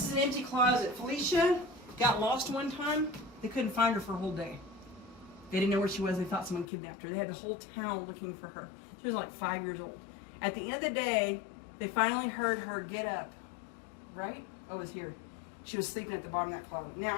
is an empty closet. Felicia got lost one time. They couldn't find her for a whole day. They didn't know where she was. They thought someone kidnapped her. They had the whole town looking for her. She was like 5 years old. At the end of the day, they finally heard her get up. Right? Oh, it's here. She was sleeping at the bottom of that closet. Now,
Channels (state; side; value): drops out; right; at 6.7 s